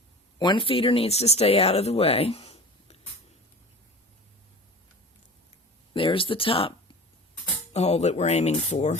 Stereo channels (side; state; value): both; normal; correlation 0.37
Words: One feeder needs to stay out of the way. There's the top hole that we're aiming for.